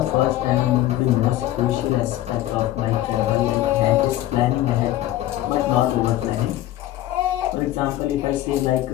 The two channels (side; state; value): right; quieter; 14.4 dB